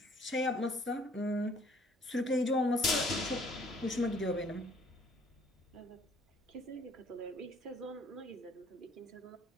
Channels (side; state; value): both; normal; correlation 0.59